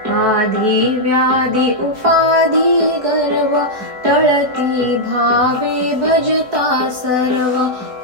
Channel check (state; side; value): late; left; 4.6 ms